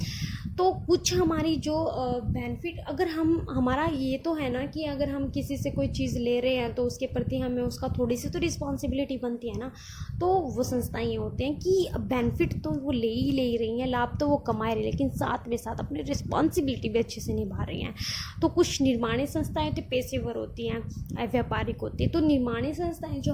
तो कुछ हमारी जो बेनिफिट अगर हमारा ये तो है ना कि अगर हम किसी से कोई चीज़ ले रहे हैं तो उसके प्रति हमें उसका थोड़ी सी तो रिस्पॉन्सिबिलिटी बनती है ना। तो वो संस्थाएं ये होते हैं कि बेनिफिट तो वो ले ही रही हैं, लाभ तो वो कमा रही हैं, लेकिन साथ में साथ अपनी रिस्पॉन्सिबिलिटी भी अच्छे से निभा रही हैं। तो कुछ निर्माणी संस्थाएं तो पेशेवर होती हैं, व्यापारिक होती है। तो निर्माणी संस्थाएं जो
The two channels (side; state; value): both; identical; correlation 1.00